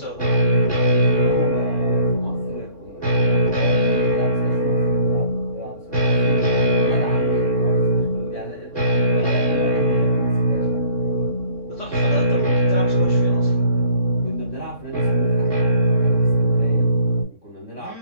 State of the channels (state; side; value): late; right; 3.6 ms